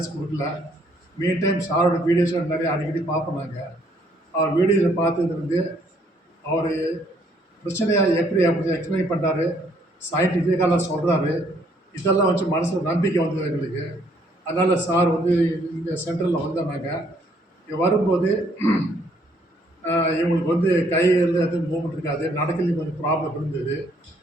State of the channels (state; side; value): normal; both; correlation 0.66